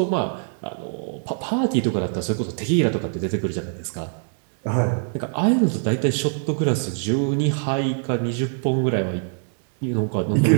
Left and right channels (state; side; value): silent; left; 63 dB below the other